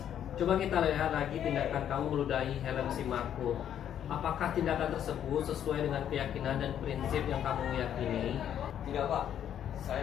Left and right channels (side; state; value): right; quieter; 9.9 dB